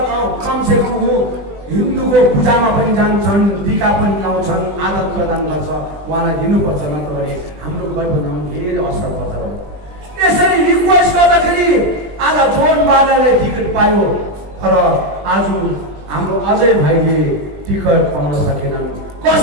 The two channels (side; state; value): left; late; 20 ms